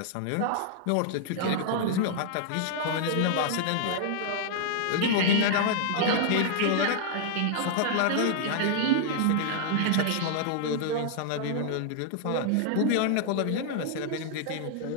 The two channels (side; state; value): both; different; correlation -0.01